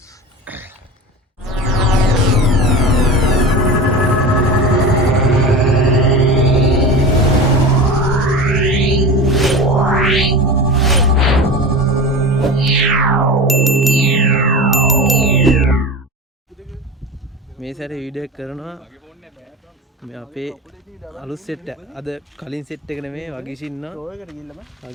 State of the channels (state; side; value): normal; both; correlation 0.29